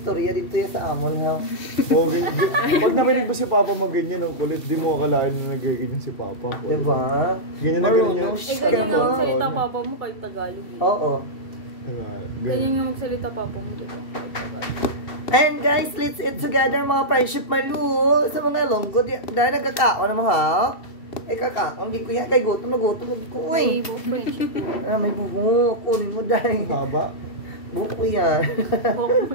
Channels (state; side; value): late; right; 2.7 ms